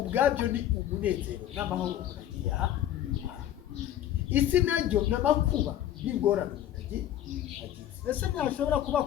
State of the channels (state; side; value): quieter; right; 11.7 dB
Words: ni umunezero n'amahoro umuntu agiye aha isi naryo n'amakuba n'ingorane umuntu agiye ese ntashobora kuba